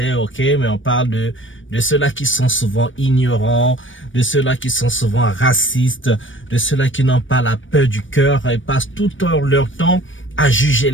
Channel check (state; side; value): late; right; 0.56 ms